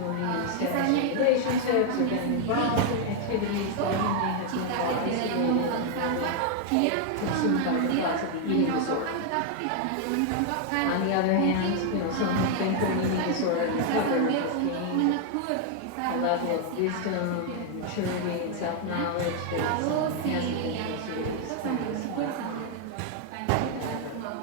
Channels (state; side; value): different; both; correlation 0.00